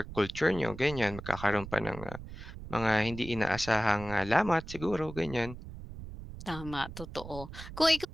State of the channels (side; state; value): right; noise; rumble, 12 dB below the sound